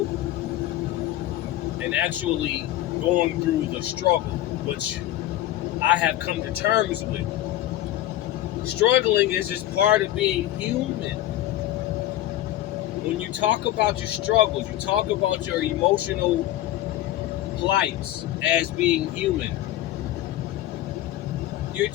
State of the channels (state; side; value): quieter; right; 14.2 dB